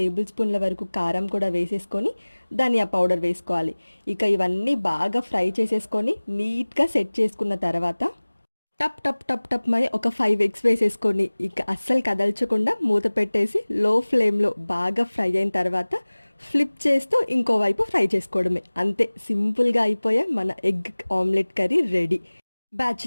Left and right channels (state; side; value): inverted; both; correlation -1.00